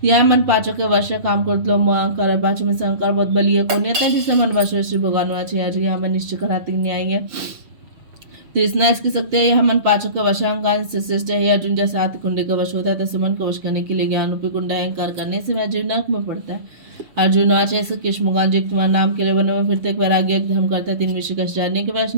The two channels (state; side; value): late; left; 6.8 ms